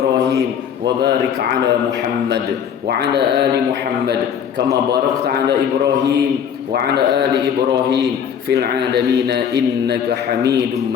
wa barik ala Muhammad wa ala ali Muhammad kama barakta ala Ibrahim wa ala ali Ibrahim fil alamin innaka Hamidum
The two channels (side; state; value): right; quieter; 8.2 dB